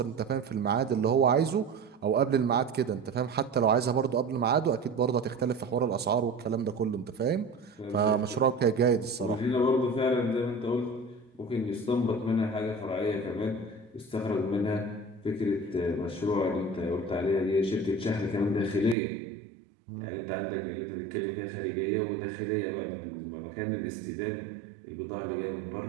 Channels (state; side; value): drops out; left; at 18.9 s